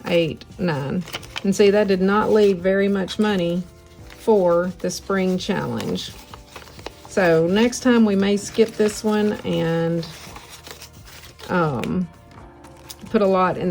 8, 9. And see, that did not leave very much money for the spring challenge. So next time we may skip this one and put a lot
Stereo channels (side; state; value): both; identical; correlation 1.00